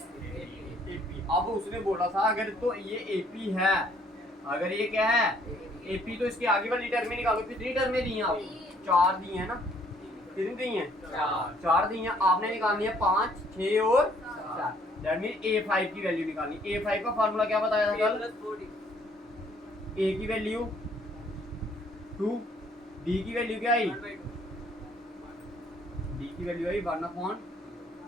AP. अब उसने बोला था अगर तो ये एपी है, अगर ये क्या है एपी, तो इसके आगे वाली टर्में निकालो। कितनी टर्में दी हैं आपको, 4 दी हैं ना, कितनी दी हैं 4 दी हैं। आपने निकालनी है 5 6 और 4। दैट मीन a5 की वैल्यू निकालनी। a5 का फार्मूला क्या बताया था कल? a की वैल्यू 2, d की वैल्यू क्या आई? d की वैल्यू आई 1/,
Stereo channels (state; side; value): normal; both; correlation 0.63